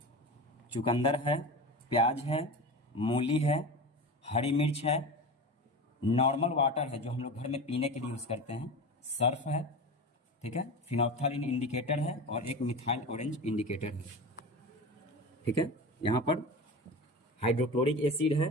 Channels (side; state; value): both; normal; correlation 0.28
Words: चुकंदर है, प्याज है, मूली है, हरी मिर्च है, नॉर्मल वाटर है जो हम लोग घर में पीने के लिए यूज़ करते हैं, सर्फ है, ठीक है, फिनोल्फ्थालीन इंडिकेटर है और एक मिथाइल ऑरेंज इंडिकेटर है, ठीक है। यहाँ पर हाइड्रोक्लोरिक एसिड